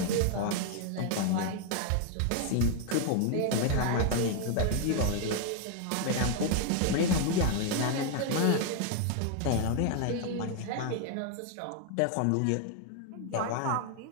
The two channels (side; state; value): both; different; correlation 0.00